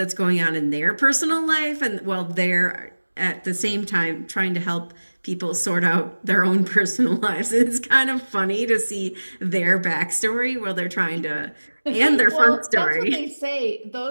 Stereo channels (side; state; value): both; inverted; correlation -1.00